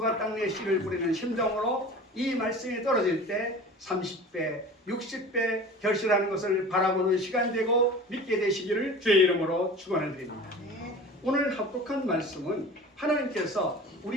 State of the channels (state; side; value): normal; both; correlation 0.38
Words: 땅에 씨를 뿌리는 심정으로 이 말씀이 떨어질 때 30배, 60배 결실하는 것을 바라보는 시간 되고 믿게 되시기를 주의 이름으로 축원을 드립니다. 오늘 합독한 말씀은 하나님께서